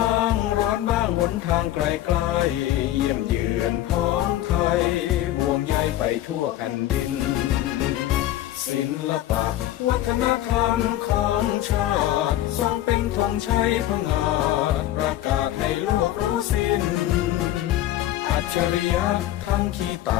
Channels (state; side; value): quieter; right; 13.8 dB